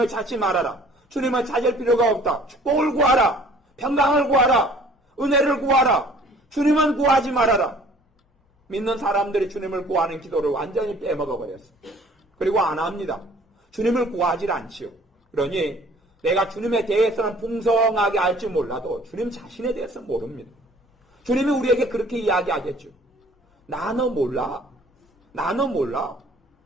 찾지 말아라. 주님을 찾을 필요가 없다. 축복을 구하라. 평강을 구하라. 은혜를 구하라. 주님은 구하지 말아라. 믿는 사람들이 주님을 구하는 기도를 완전히 빼먹어버렸습니다. 그리고 안 합니다. 주님을 구하지 않지요. 그러니 내가 주님에 대해서는 풍성하게 알지 몰라도 주님 자신에 대해서 모릅니다. 주님이 우리에게 그렇게 이야기하겠죠. 나는 몰라.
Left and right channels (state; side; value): normal; both; correlation 0.53